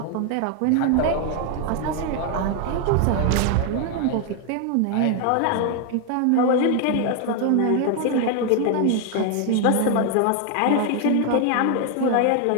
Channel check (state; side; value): different; both; correlation 0.01